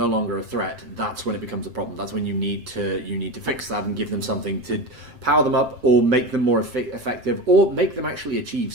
longer a threat, that's when it becomes a problem. That's when you need to fix that and give them something to power them up, or make them more effective, or make them actually achieve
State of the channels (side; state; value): left; late; 7.6 ms